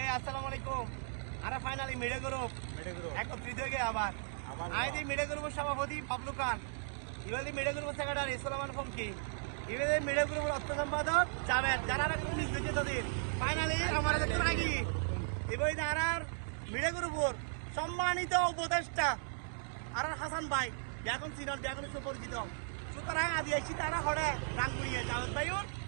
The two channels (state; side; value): silent; left; digital silence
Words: আসসালামু আলাইকুম। আরে ফাইনালি মিডে গ্রুপ একত্রিত হয়ে গিয়ে আবার আইদি মিডে গ্রুপের সভাপতি বাবলু খান, ইবাদি মিডে গ্রুপের সেক্রেটারি সুলেমান ফমকি, ইবাদি মিডে গ্রুপের অর্থ সম্পাদক জাভেদ, যারা পুলিশ দেখে তাদের ফাইনালি আমার কাছে রাখি এবার আর মিডে গ্রুপের সম্মানিত উপদেষ্টা আর হাসান ভাই এখন সিনিয়র এখন সুপরিচিত। সুতরাং আদি আইসি তারা হরে গান করিয়ে জাভেদ ভাইউর